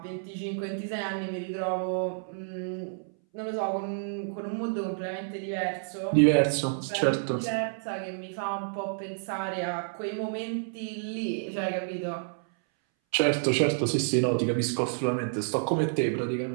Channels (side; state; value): left; silent; 58 dB below the other